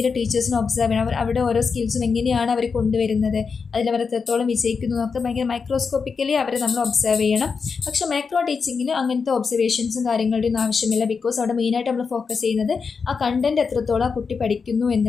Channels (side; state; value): right; quieter; 5.3 dB